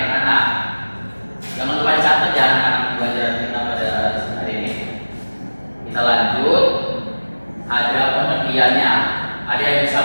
anak-anak. Jangan lupa dicatat ya anak-anak pelajaran kita pada hari ini. Kita lanjut. Ada pengertiannya. Ada yang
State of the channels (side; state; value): both; inverted; correlation -1.00